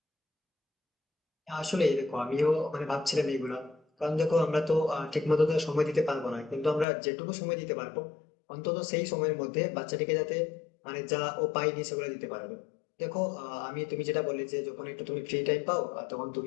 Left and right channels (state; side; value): drops out; right; at 6.9 s